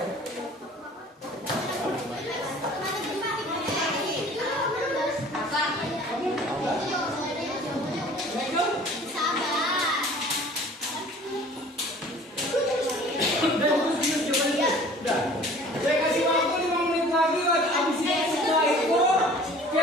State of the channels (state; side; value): normal; both; correlation 0.48